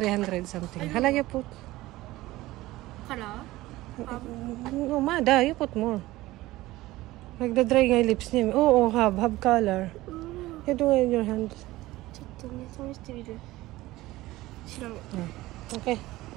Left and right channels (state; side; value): quieter; left; 17.8 dB